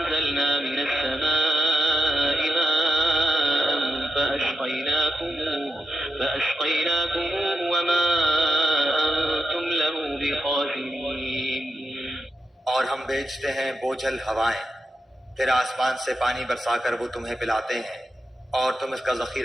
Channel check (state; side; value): normal; both; correlation 0.88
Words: مِنَ السَّمَاءِ مَاءً فَأَسْقَيْنَاكُمُوهُ وَمَا أَنتُمْ لَهُ بِخَازِنِينَ۔ اور ہم بھیجتے ہیں بوجھل ہوائیں، پھر آسمان سے پانی برسا کر وہ تمہیں پلاتے ہیں اور تم اس کا